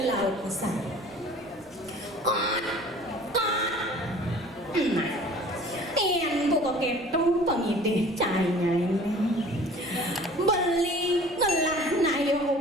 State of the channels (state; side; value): normal; both; correlation 0.47